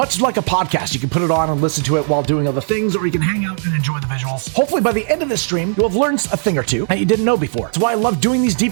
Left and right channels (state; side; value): silent; left; digital silence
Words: like a podcast, you can put it on and listen to it while doing other things, or you can hang out and enjoy the visuals. Hopefully by the end of this stream, you'll have learned a thing or two that you didn't know before. That's why I love doing these